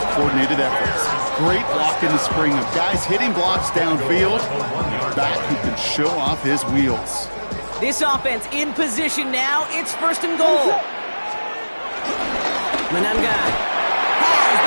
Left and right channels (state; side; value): inverted; both; correlation -1.00